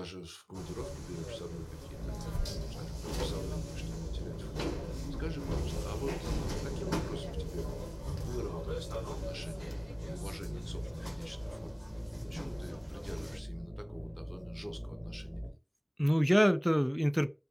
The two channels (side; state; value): both; identical; correlation 1.00